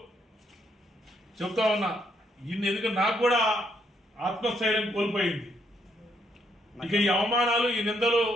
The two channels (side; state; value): both; normal; correlation 0.74